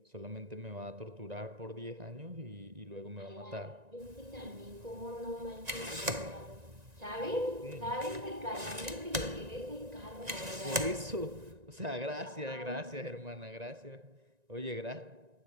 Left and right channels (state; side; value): late; left; 1.9 ms